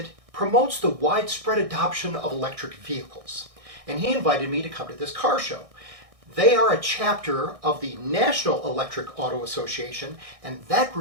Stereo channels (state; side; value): late; left; 1.6 ms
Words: promotes the widespread adoption of electric vehicles. And he invited me to come to this car show. They are a chapter of the National Electric Auto Association, and that